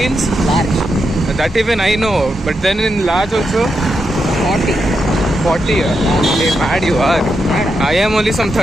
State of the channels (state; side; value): normal; both; correlation 0.84